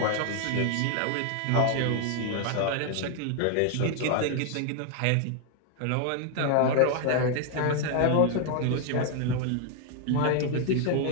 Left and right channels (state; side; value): different; both; correlation 0.00